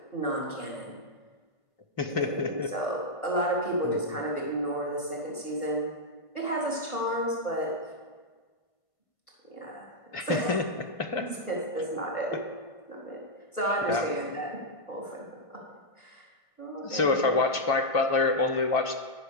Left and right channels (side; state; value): right; late; 1.5 ms